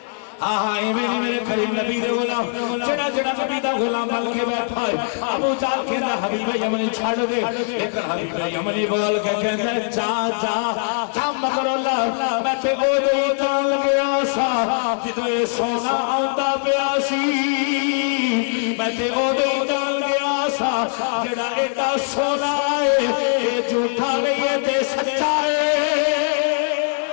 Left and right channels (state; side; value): silent; right; digital silence